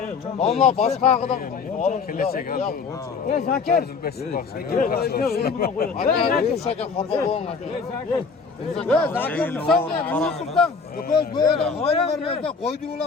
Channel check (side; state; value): right; quieter; 5.1 dB